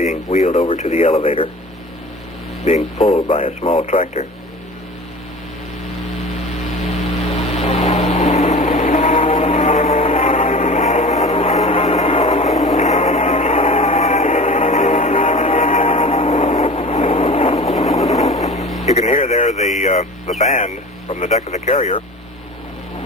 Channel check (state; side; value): normal; both; correlation 0.38